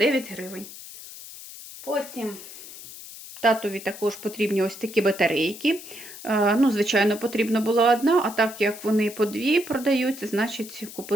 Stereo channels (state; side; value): noise; left; hiss, 14 dB below the sound